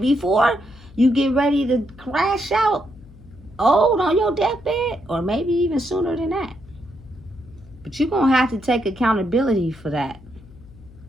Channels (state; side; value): noise; left; hum, 22 dB below the sound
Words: you get ready to crash out old on your deathbed, or maybe even sooner than that. But you're going to have to take accountability for that,